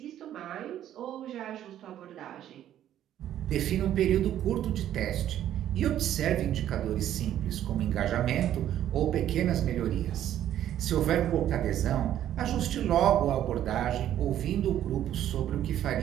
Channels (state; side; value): quieter; left; 11.5 dB